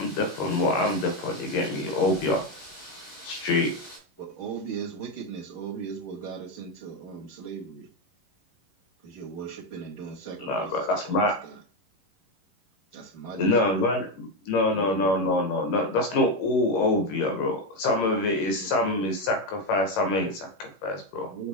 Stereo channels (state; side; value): late; right; 11 ms